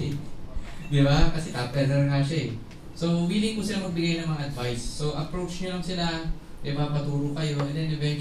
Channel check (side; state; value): both; identical; correlation 1.00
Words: Di ba? Kasi top earner nga siya eh. So, willing po sila magbigay ng mga advice. So, approach nyo lang sila, di ba, paturo kayo, and then